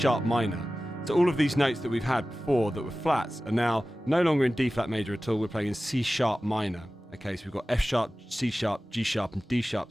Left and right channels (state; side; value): normal; both; correlation 0.96